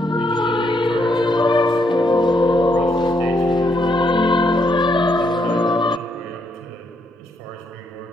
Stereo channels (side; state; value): both; normal; correlation 0.75